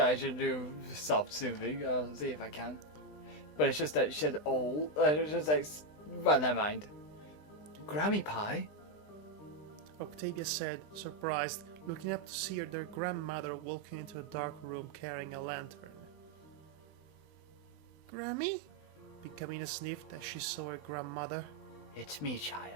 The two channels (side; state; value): right; late; 20 ms